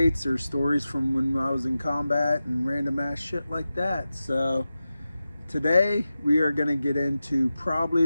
or stories from when I was in combat and random ass shit like that. So today we are going to get into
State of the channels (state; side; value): inverted; both; correlation -0.93